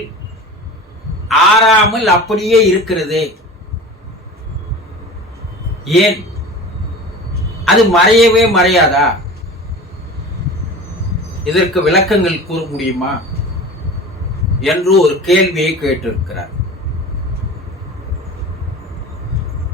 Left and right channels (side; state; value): both; normal; correlation 0.36